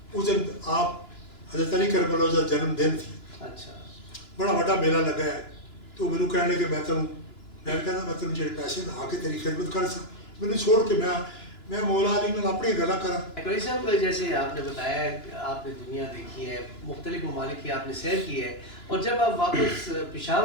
اس دن آپ حضرت علی کربلا کا جنم دن تھی. اچھا بڑا بڑا میلہ لگا ہے تو مینوں کہنے کہ میں تمہیں میں نے کہا میں تین جڑے پیسے آ کے تیری خدمت کر سا میں چھوڑ کے میں مولا علی نے اپنی گلا کرا. قریشی صاحب جیسے آپ نے بتایا کہ آپ نے دنیا دیکھی ہے, مختلف ممالک کی آپ نے سیر کی ہے, اور جب آپ واپس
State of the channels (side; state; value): right; late; 3.0 ms